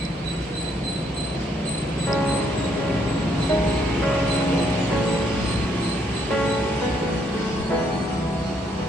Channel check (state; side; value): normal; both; correlation 0.71